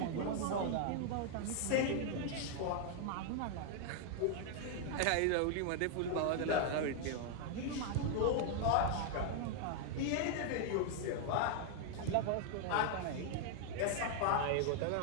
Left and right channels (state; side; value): different; both; correlation 0.00